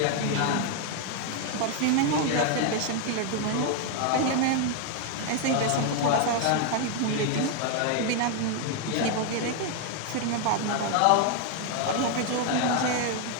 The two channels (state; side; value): different; both; correlation 0.01